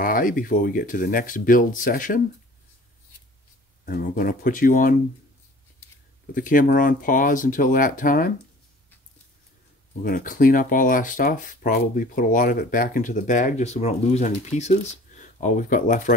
before we get to the next build session. And we're going to put the camera on pause until that time. We're going to clean up all our stuff, probably put a lot of it back into the bag just so we don't lose any pieces. All we've got left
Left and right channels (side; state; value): both; normal; correlation 0.47